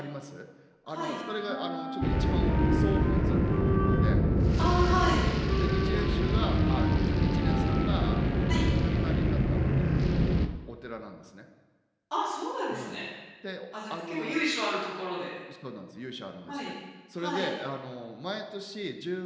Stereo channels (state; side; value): identical; both; correlation 1.00